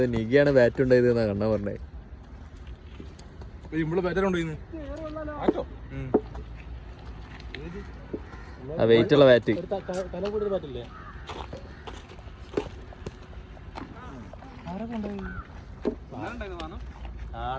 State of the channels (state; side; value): identical; both; correlation 1.00